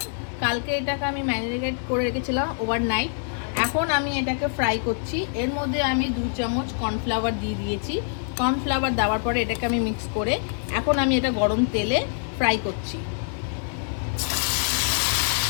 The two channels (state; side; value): silent; right; 62 dB below the other